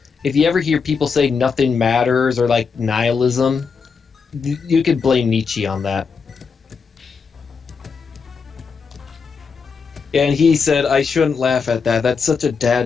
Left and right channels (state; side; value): quieter; right; 5.5 dB